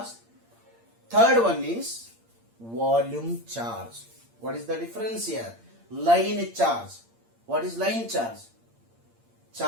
Third one is volume charge. What is the difference here? Line charge. What is line charge?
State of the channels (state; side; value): late; left; 8.7 ms